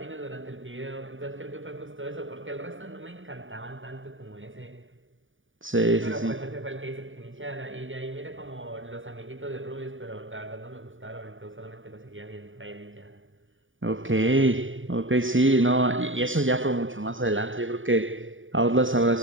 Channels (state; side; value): late; left; 0.57 ms